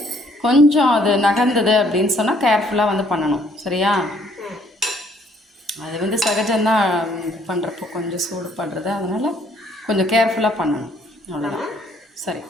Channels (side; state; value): both; normal; correlation 0.64